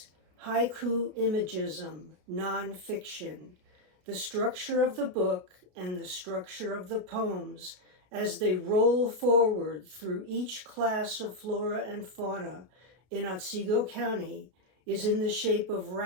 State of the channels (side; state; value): left; late; 32 ms